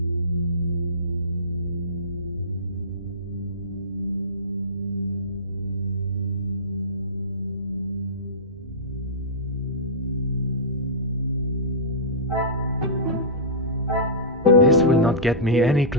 will not get me any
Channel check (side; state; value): both; normal; correlation -0.19